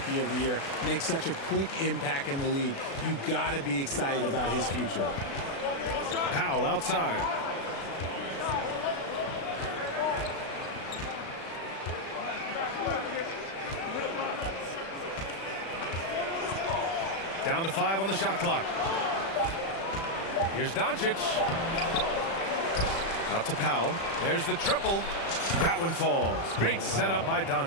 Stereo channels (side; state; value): right; late; 36 ms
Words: of the Year, make such a quick impact in the league. You got to be excited about his future. Powell outside. Down to 5 on the shot clock. Here's Doncic. Out to Powell. There's the triple. That one falls. Great setup by